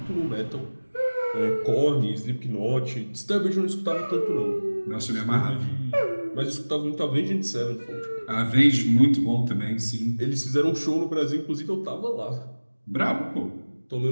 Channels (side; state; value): both; inverted; correlation -1.00